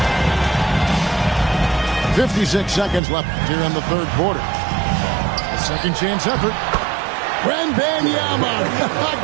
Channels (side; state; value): left; drops out; at 3.0 s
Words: .56 seconds left here in the third quarter. A second chance effort. Wembanyama